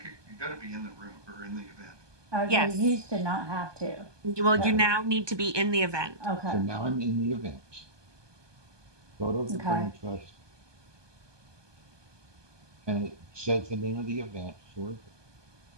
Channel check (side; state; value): left; late; 1.2 ms